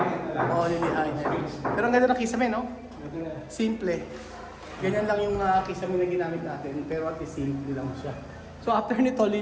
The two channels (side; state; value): both; identical; correlation 1.00